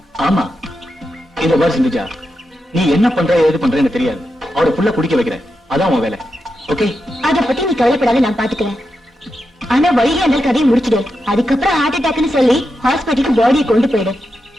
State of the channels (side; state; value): both; normal; correlation 0.87